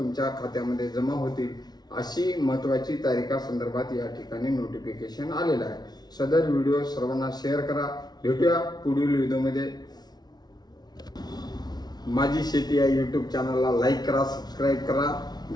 खात्यामध्ये जमा होतील अशी महत्त्वाची तारीखासंदर्भात या ठिकाणी नोटिफिकेशन आलेलं आहे। सदर व्हिडिओ सर्वांना शेअर करा। भेटूया पुढील व्हिडिओमध्ये। माझी शेती या यूट्यूब चॅनलला लाईक करा, सबस्क्राईब करा।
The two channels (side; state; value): right; late; 0.19 ms